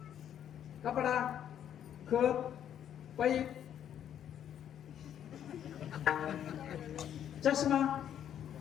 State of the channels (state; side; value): quieter; right; 9.9 dB